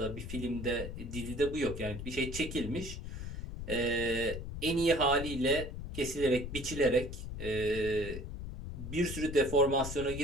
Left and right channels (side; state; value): left; noise; rumble, 7 dB below the sound